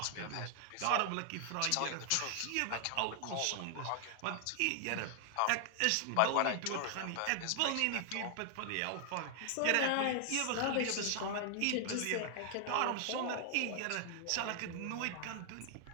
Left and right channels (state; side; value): different; both; correlation 0.00